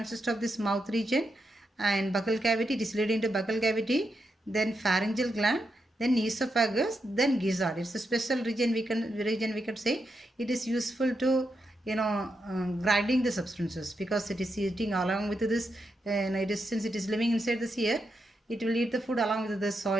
of this mouth region and buccal cavity. It is leading to buccal cavity. Then pharyngeal gland. Then esophagus, then gizzard. It's a special region we can say. It is useful to grinding the substances, because it is eating along with this, and since it is living inside this ear, it will eat the food along with the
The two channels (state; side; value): normal; both; correlation 0.84